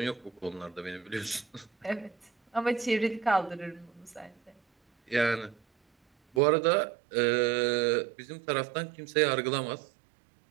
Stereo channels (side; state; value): left; drops out; at 6.4 s